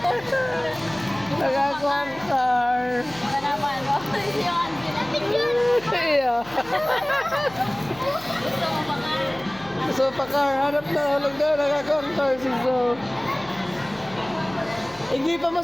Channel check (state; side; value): noise; left; hum, 22 dB below the sound